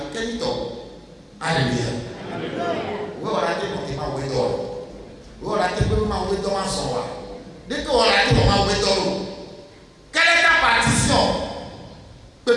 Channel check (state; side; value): identical; both; correlation 1.00